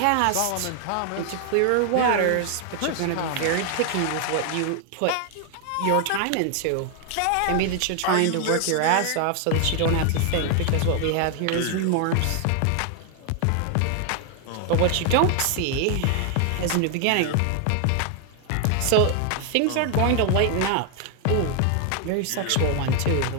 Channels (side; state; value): both; different; correlation 0.00